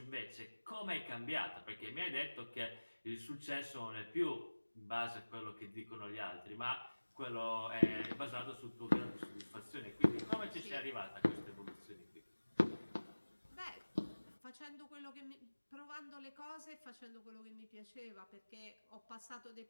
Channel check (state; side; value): inverted; both; correlation -1.00